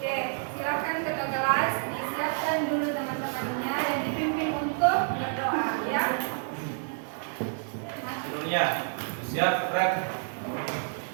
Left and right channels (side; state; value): left; silent; 59 dB below the other